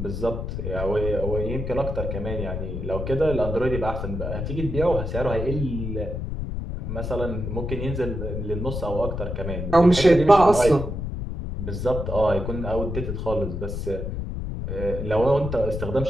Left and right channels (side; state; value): left; noise; rumble, 4 dB below the sound